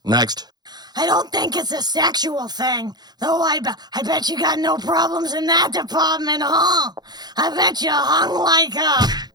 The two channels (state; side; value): late; left; 0.20 ms